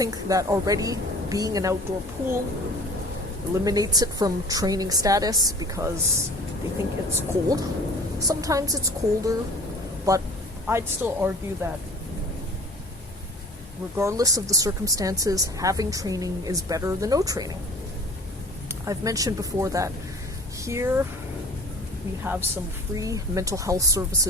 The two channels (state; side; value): normal; both; correlation 0.45